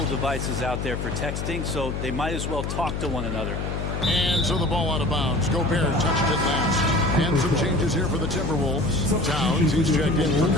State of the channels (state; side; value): noise; left; hum, 3 dB below the sound